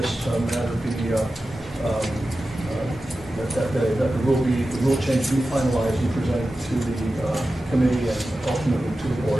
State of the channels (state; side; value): normal; both; correlation 0.93